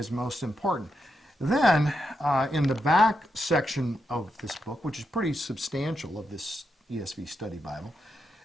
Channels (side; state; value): both; normal; correlation 0.84